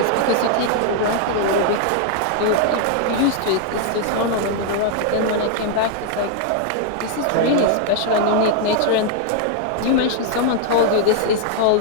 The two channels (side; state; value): both; different; correlation 0.00